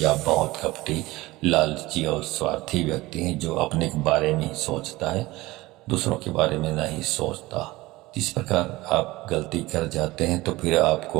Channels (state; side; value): quieter; left; 19.7 dB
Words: आप बहुत कपटी, लालची और स्वार्थी व्यक्ति हैं, जो अपने के बारे में ही सोचता है, दूसरों के बारे में नहीं सोचता। इस प्रकार आप गलती कर जाते हैं तो फिर